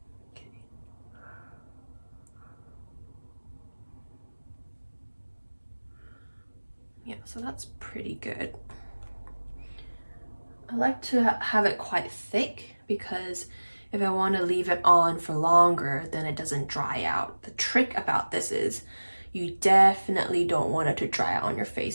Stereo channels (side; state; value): both; inverted; correlation -1.00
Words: Okay. Yeah, so that's pretty good. I like to have it quite thick because if I want to leave it on for longer, then it doesn't dry out. The trick about this is you definitely don't want it to dry out on your